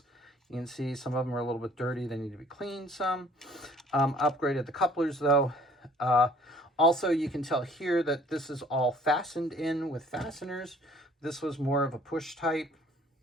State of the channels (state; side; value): normal; both; correlation 0.55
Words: You can see some of them are a little bit dirty. They need to be cleaned some. Upgraded the couplers, though. Also, you can tell here that this is all fastened in with fasteners. This was more of a push type,